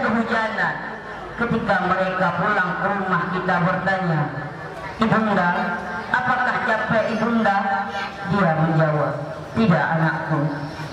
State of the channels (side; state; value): both; identical; correlation 1.00